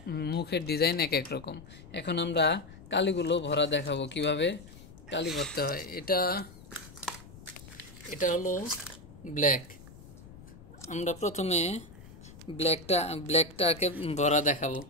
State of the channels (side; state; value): left; noise; rumble, 18 dB below the sound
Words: মুখের ডিজাইন এক এক রকম। এখন আমরা কালিগুলো ভরা দেখাবো কিভাবে কালি ভরতে হয়। এটা হলো ব্ল্যাক। আমরা প্রথমে ব্ল্যাকটাকে ভরা দেখাবো